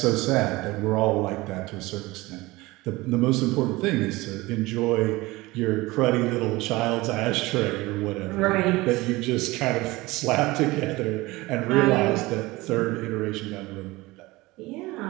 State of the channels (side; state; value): left; quieter; 20.7 dB